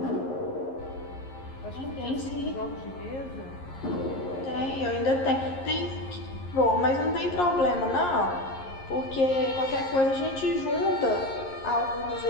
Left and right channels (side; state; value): right; late; 11 ms